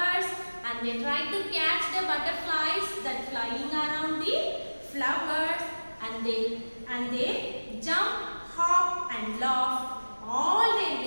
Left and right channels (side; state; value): both; inverted; correlation -1.00